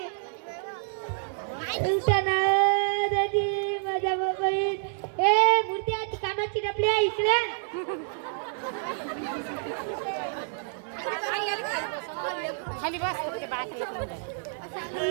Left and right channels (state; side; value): silent; left; digital silence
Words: उठा ना धनी. माझ्या बाबाई ए मूर्ती कानाची डबली आहे इकडे. खाली बस.